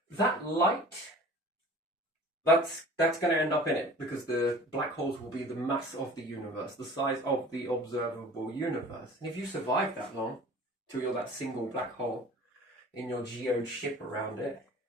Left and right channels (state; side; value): normal; both; correlation 0.44